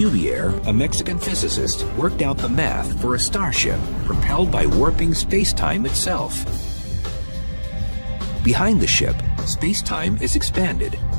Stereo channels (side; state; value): both; inverted; correlation -1.00